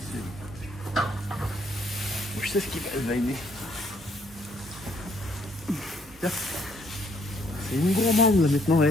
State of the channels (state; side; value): normal; both; correlation 0.67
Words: cils. Je sais ce qu'il va aimer. C'est une gourmande là maintenant,